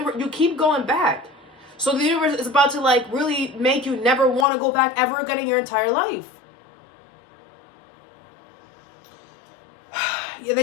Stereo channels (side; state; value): right; drops out; at 4.5 s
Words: you keep going back. So the universe is about to, like, really make you never want to go back ever again in your entire life. Yeah,